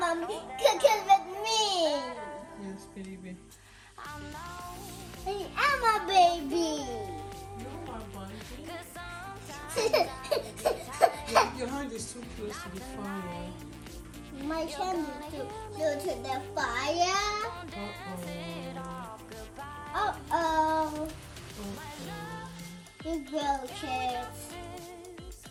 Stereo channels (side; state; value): both; identical; correlation 1.00